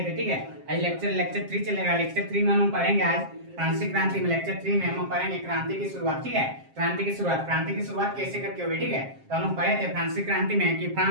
थे। ठीक है, आज लेक्चर 3 चलेगा। लेक्चर 3 में हम लोग पढ़ेंगे आज फ्रांसीसी क्रांति में। लेक्चर 3 में हम लोग पढ़ेंगे क्रांति की शुरुआत। ठीक है, क्रांति की शुरुआत कैसे करके हुई। ठीक है, तो हम लोग पढ़े थे फ्रांसीसी क्रांति में कि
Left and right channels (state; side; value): late; left; 7.5 ms